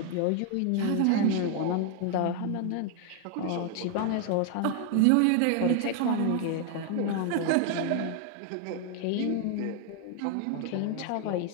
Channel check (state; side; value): different; both; correlation 0.00